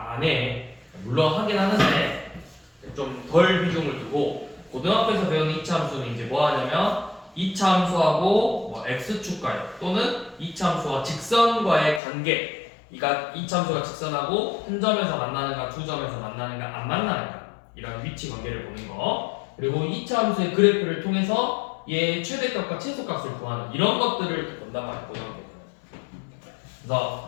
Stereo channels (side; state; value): right; drops out; at 12.0 s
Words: 해. 물론 하긴 하는데 좀 덜 비중을 두고 고등학교에서 배우는 이차함수는 이제 뭐 하냐면 이차함수하고 뭐 x축과역 또는 이차함수와 직선과의 관계. 그러니까 이차함수가 직선하고 한 점에서 만나는가 두 점에서 만나는가 안 만나는가 이런 위치 관계를 보는 거. 그리고 이차함수의 그래프를 통해서 얘의 최대값과 최소값을 구하는 이런 것들을 본단 말이야 고등학교.